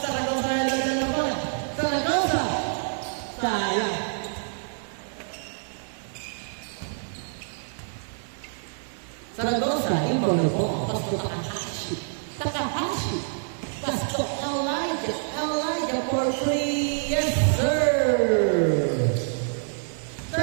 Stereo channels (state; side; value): silent; left; 60 dB below the other